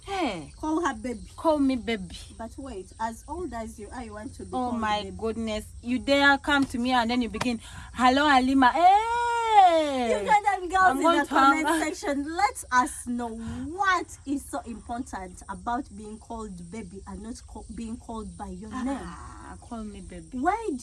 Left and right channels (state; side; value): identical; both; correlation 1.00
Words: Hey, Call her baby. call me baby. But wait, as old as you are, you want to be Oh called my baby. goodness. You dare come to me and then you begin, hello Halima. Hey! Ugandan girls I'm in going the to hang- comment section, let us know what is so important about being called baby and not being called by your name. Call me baby. Why